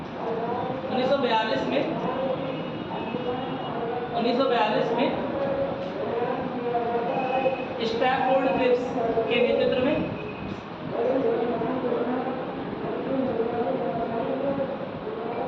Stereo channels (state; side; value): identical; both; correlation 1.00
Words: 1942 में स्टैफोर्ड क्रिप्स के नेतृत्व में